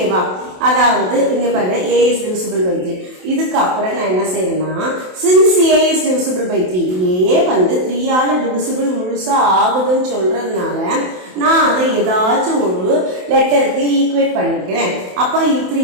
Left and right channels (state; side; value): late; left; 27 ms